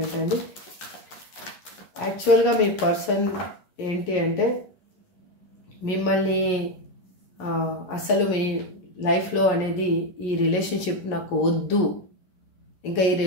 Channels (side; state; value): right; late; 11 ms